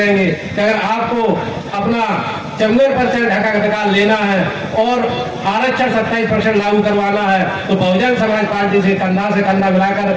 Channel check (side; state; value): both; identical; correlation 1.00